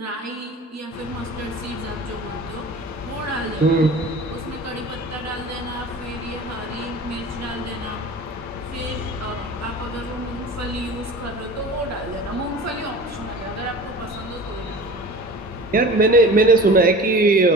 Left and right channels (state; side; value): normal; both; correlation 0.39